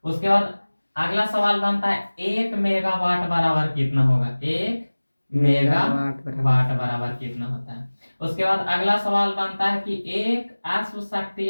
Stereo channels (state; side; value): inverted; both; correlation -1.00